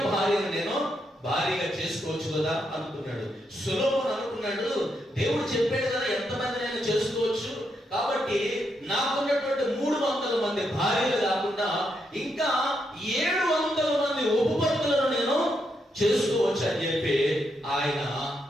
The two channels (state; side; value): normal; both; correlation 0.80